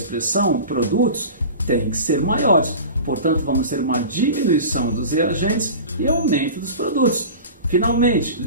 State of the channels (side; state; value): both; inverted; correlation -0.35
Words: produtos, têm que ser maiores. Portanto, vamos ter uma diminuição dos reagentes e aumento dos produtos. Finalmente,